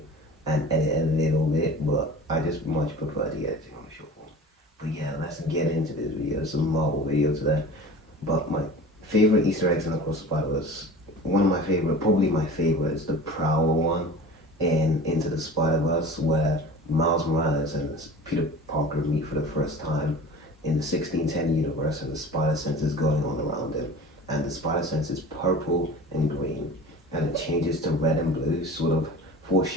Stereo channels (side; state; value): both; normal; correlation 0.39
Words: and edit a little bit, but I just much prefer the editing on the short form. But yeah, let's get into this video. It's a Marvel video today. But my favorite Easter eggs in Across the Spider-Verse, one of my favorite, probably my favorite, is the Prowler one in Into the Spider-Verse, where Miles Morales and Peter Parker meet for the first time in the 1610 universe, and the spider sense is going on around him. And the spider sense is purple and green, and it changes to red and blue, sort of